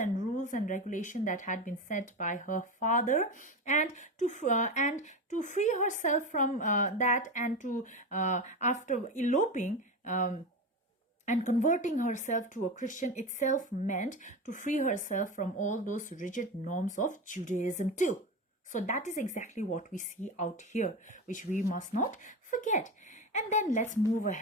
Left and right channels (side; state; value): both; normal; correlation 0.21